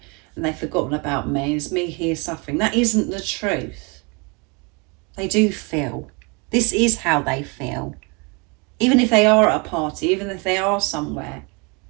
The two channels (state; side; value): quieter; left; 30.7 dB